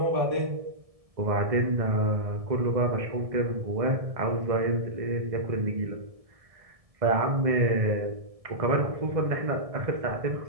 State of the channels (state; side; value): late; left; 1.7 ms